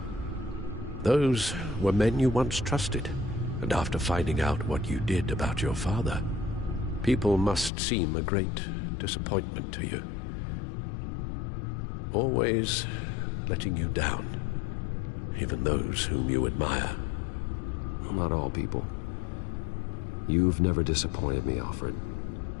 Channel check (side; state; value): right; drops out; at 7.7 s